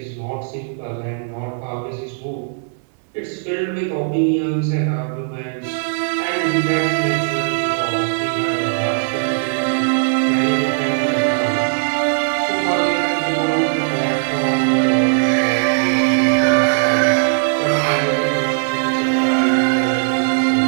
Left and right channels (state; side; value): silent; left; digital silence